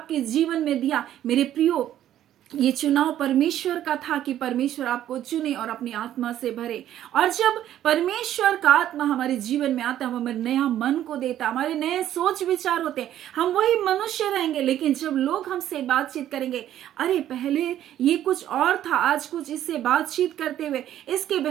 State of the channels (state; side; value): quieter; left; 11.8 dB